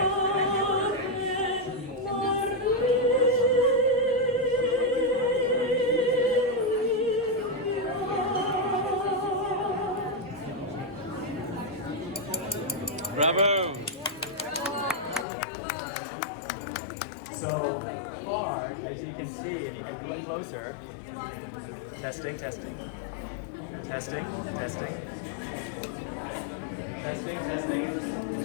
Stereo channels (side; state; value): right; drops out; at 15.2 s